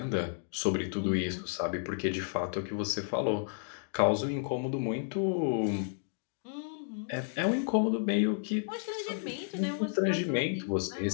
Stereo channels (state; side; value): silent; right; digital silence